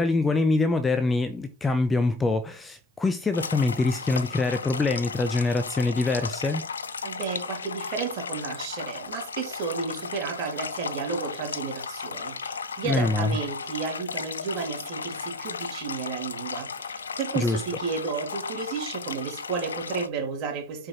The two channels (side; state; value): both; normal; correlation 0.42